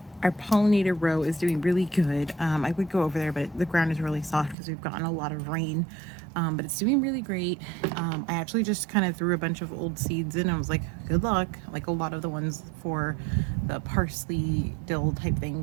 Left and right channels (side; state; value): left; drops out; at 4.5 s